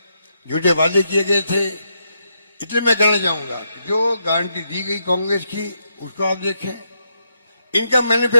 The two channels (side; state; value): both; inverted; correlation -0.81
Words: झूठे वादे किए गए थे। इसलिए मैं कहना चाहूंगा कि जो गारंटी दी गई कांग्रेस की उसको आप देखें, इनका